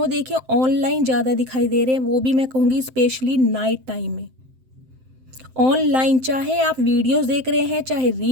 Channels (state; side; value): late; left; 7.7 ms